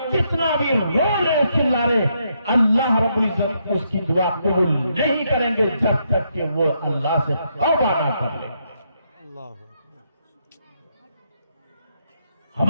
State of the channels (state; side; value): inverted; both; correlation -0.78